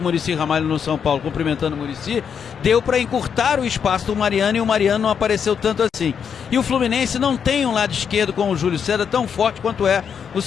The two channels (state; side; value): quieter; right; 7.3 dB